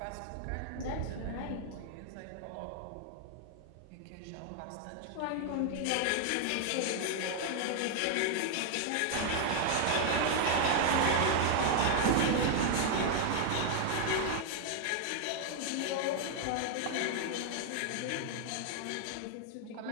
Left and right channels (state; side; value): different; both; correlation 0.00